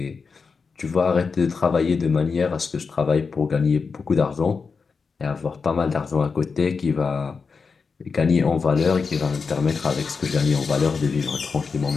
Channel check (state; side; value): quieter; right; 5.1 dB